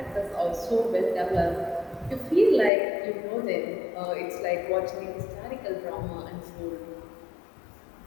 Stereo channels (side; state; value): right; drops out; at 2.7 s